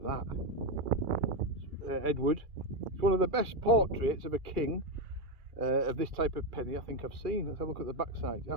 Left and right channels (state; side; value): late; left; 2.3 ms